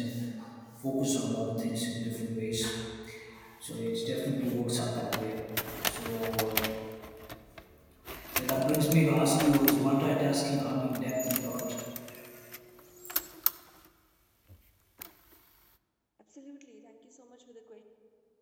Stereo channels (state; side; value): identical; both; correlation 1.00